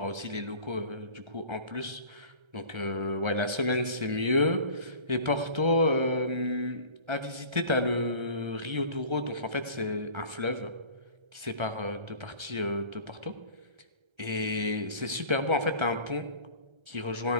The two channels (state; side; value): late; left; 1.3 ms